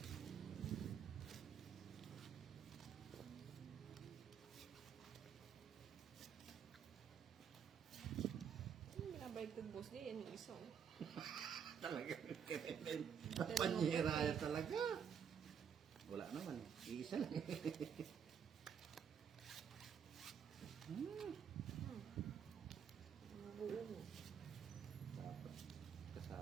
baliktad boss di, yan yung isa. Oh. Talaga. Panyera talaga. Wala naman. Iisa lang. Buo mo. Dapat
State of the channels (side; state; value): left; quieter; 7.5 dB